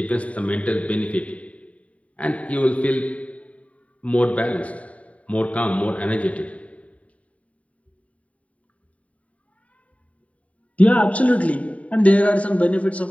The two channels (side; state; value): right; late; 0.067 ms